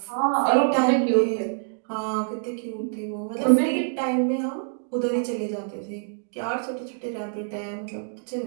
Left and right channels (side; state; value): left; silent; digital silence